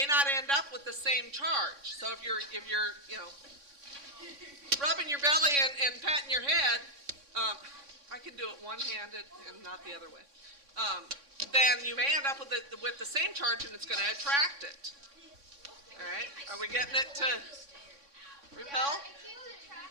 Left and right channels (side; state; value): left; late; 3.6 ms